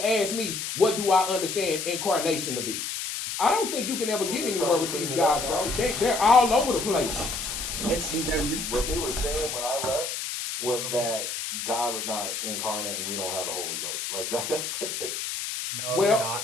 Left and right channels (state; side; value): noise; left; hiss, 4 dB below the sound